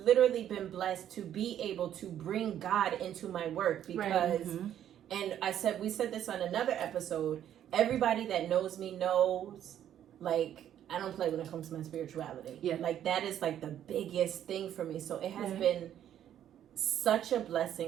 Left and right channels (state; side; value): quieter; left; 10.6 dB